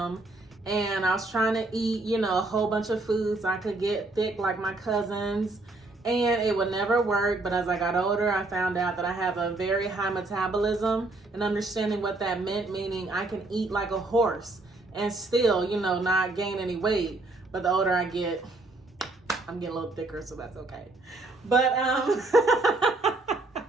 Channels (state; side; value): quieter; left; 3.1 dB